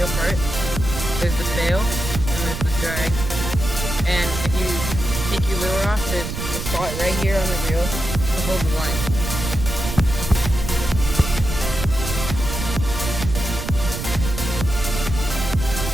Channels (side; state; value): right; noise; rumble, 5 dB below the sound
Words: part. There's the sail, and there's the drag. And if you take your lure off, there's a spot right here on the reel to hold the line.